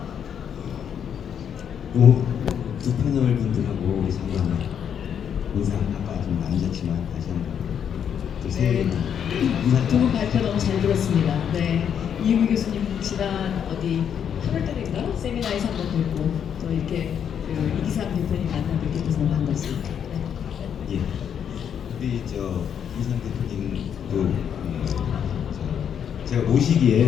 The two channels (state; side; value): quieter; right; 8.3 dB